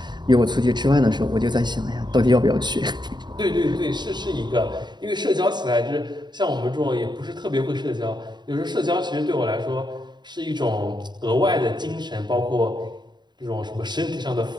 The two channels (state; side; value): late; left; 0.21 ms